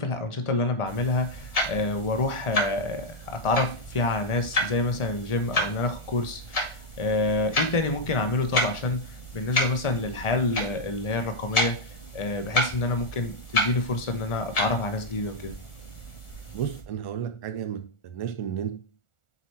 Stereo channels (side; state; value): right; late; 1.4 ms